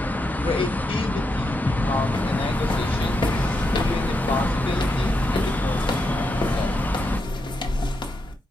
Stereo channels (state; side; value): normal; both; correlation 0.83